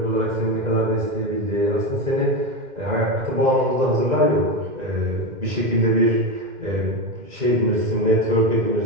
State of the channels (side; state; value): left; late; 2.1 ms